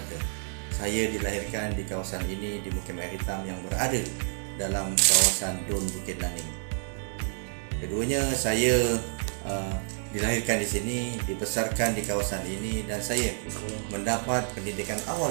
Saya dilahirkan di kawasan ini di Mukim Air Hitam yang berada dalam kawasan Don Bukit Naning. Keduanya saya dilahirkan di sini, dibesarkan di kawasan ini, dan saya mendapat pendidikan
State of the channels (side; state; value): left; silent; digital silence